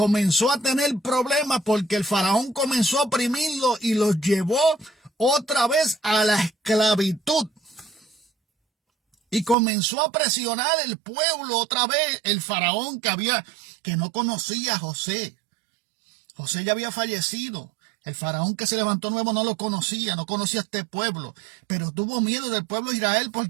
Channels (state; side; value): drops out; left; at 9.6 s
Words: a tener problemas porque el faraón comenzó a oprimirlo y los llevó otra vez a la esclavitud. Y comenzó a presionar el pueblo otra vez, el faraón que no conocía a José. José ya había fallecido. El faraón que se levantó nuevo no lo conocía, no conocía a este pueblo, pero tuvo miedo del pueblo de Israel